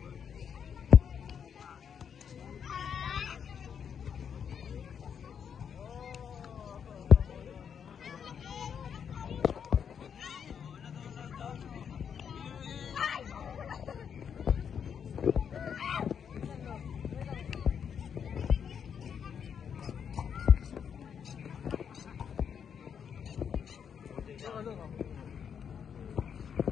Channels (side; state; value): right; quieter; 7.5 dB